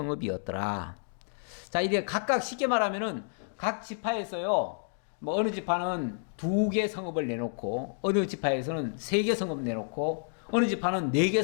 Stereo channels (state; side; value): silent; right; digital silence